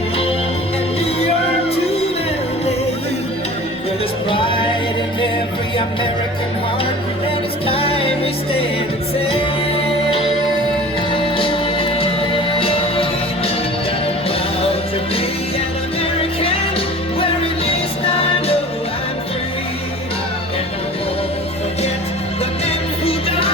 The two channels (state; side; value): noise; right; rumble, 27 dB below the sound